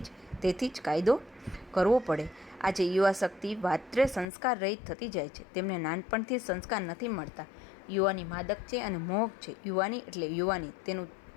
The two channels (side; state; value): right; drops out; at 4.2 s